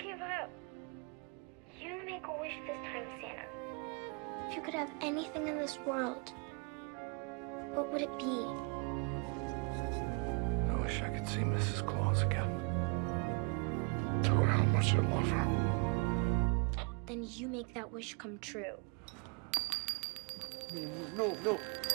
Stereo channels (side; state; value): left; quieter; 34.3 dB